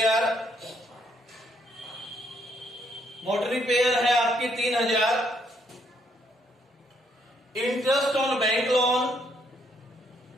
Motor repair है आपकी 3,000। Interest on bank loan,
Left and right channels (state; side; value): normal; both; correlation 0.71